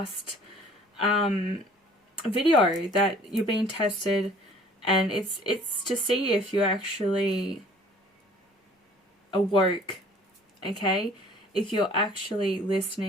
video that you're being tested, and it's to see if you're actually awoke, okay? If you're actually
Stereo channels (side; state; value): both; normal; correlation 0.53